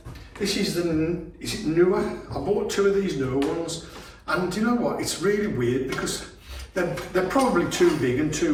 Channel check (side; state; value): both; identical; correlation 1.00